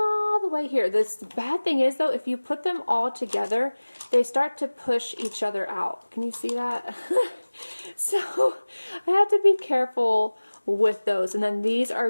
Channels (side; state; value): both; inverted; correlation -1.00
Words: the way here. The bad thing is, though, if you put them all together, they start to push each other out. Can you see that? So I have to be careful with those. And then these